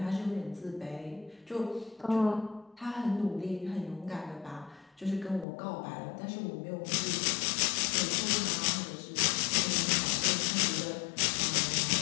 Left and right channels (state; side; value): drops out; right; at 5.5 s